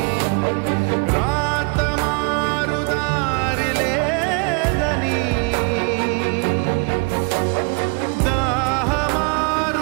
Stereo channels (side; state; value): left; quieter; 32.4 dB